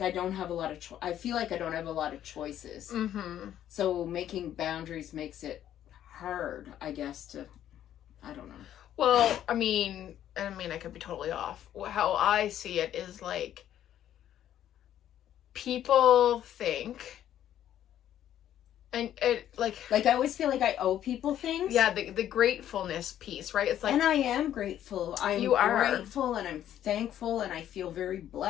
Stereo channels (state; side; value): quieter; right; 11.2 dB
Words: I don't have a lot of, I feel like I don't have a lot of choices. Mm-hmm. So making boundaries makes it hard, I guess, to, I don't know. Well, I mean, I could be totally off. How I see it is like, people think, and it like I always feel like I owe people things. yeah, the gratefulness piece, right? It's like, and I am grateful. I'm You are. grateful and I'm thankful and I feel very